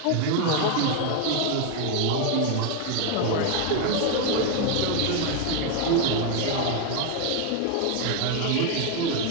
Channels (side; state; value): both; different; correlation 0.01